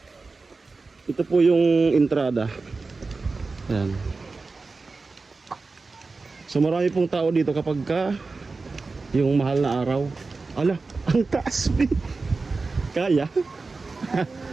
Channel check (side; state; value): left; quieter; 3.9 dB